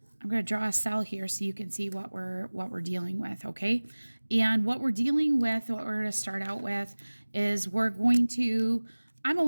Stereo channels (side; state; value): both; inverted; correlation -1.00